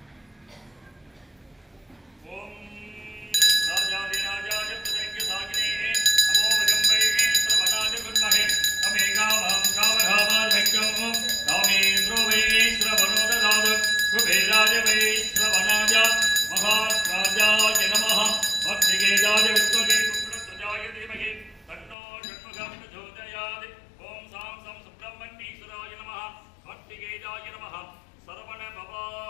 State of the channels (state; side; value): drops out; right; at 22.0 s